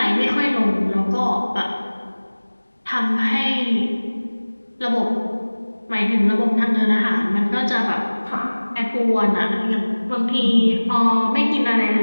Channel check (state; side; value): inverted; both; correlation -1.00